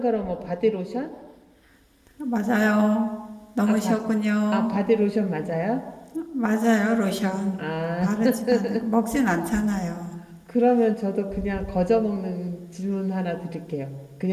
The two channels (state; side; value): identical; both; correlation 1.00